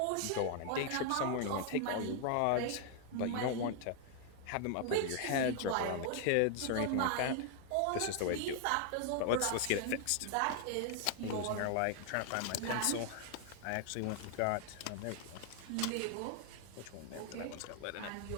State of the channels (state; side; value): different; both; correlation 0.00